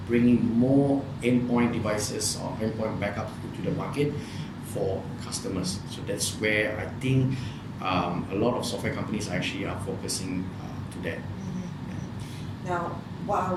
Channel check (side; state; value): both; identical; correlation 1.00